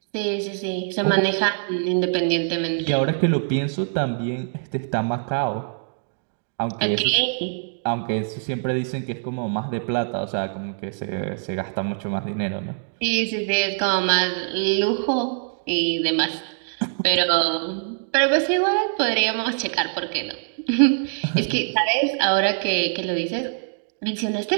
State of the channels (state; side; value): silent; left; digital silence